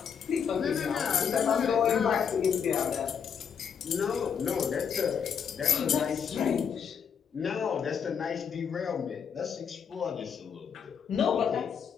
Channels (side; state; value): right; quieter; 7.2 dB